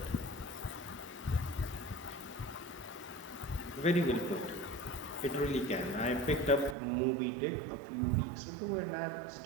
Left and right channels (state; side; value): drops out; left; at 6.8 s